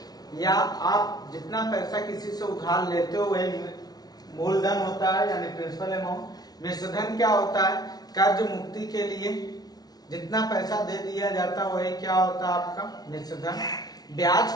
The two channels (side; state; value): right; late; 0.19 ms